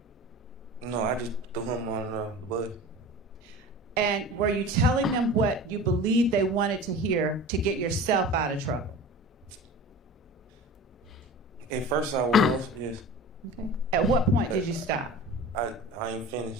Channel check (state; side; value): normal; both; correlation 0.36